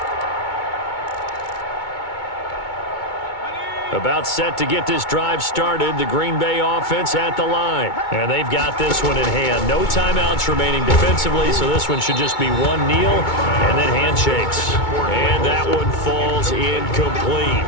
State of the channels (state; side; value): late; right; 2.2 ms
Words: About set to get this drive started, the Green Bay offense at the line. And they've got this one in hand. No timeouts remaining defensively, so this one should just be one kneel and then handshakes. And that one falls incomplete.